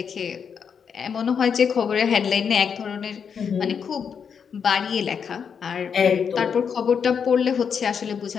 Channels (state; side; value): quieter; right; 6.8 dB